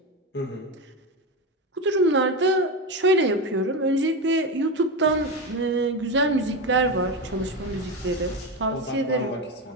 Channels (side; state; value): both; normal; correlation 0.17